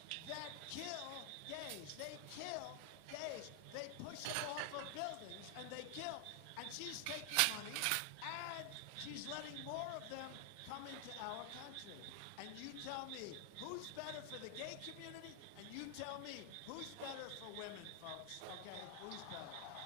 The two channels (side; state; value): both; different; correlation 0.00